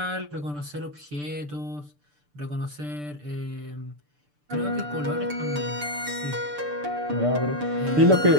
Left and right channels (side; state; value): left; late; 6.8 ms